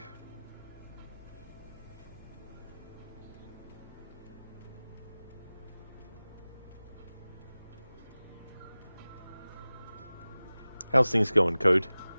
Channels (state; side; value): inverted; both; correlation -0.98